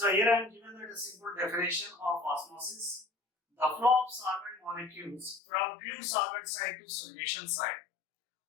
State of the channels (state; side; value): drops out; right; at 5.4 s